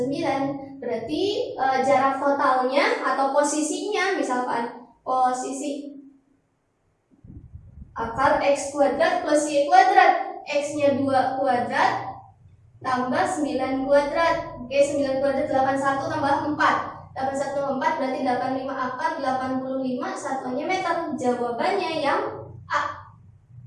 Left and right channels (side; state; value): both; identical; correlation 1.00